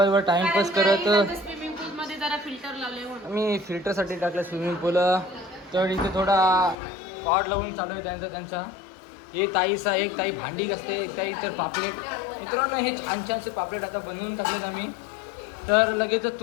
टाइमपास करत. स्विमिंग पूल मध्ये जरा फिल्टर लावले म्हणून मी फिल्टरसाठी टाकलं स्विमिंग पूल. तर इथे थोडा पॉट लावून चालू आहे त्यांचा एक ताई भांडी असते, एक ताई तर पापलेट. मित्रांनो हे छान छानसे पापलेट आता बनवून टाकलेत आम्ही. तर लगेचच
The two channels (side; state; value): right; drops out; at 6.8 s